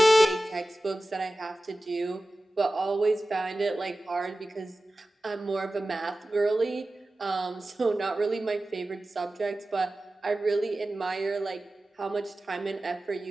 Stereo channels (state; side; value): normal; both; correlation 0.96